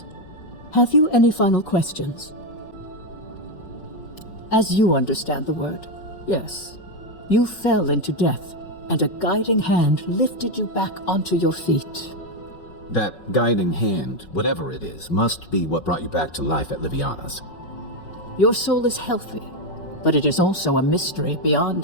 have you any final questions? As you understand the word, yes, you fell into death, and a guiding hand lifted you back onto your feet. That guiding hand, whatever it is, must be what brought you back to life at Liviana's. Your soul is healthy, but it is also a mystery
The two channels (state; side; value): late; right; 5.4 ms